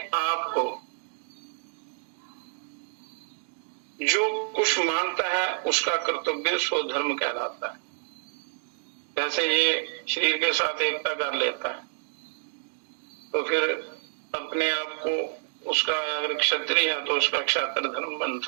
आप को जो कुछ मानता है उसका कर्तव्य स्वधर्म कहलाता है। जैसे ये शरीर के साथ एकता कर लेता है तो फिर अपने आप को उसका, अगर क्षत्रिय है तो उसका क्षात्र धर्म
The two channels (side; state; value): left; silent; digital silence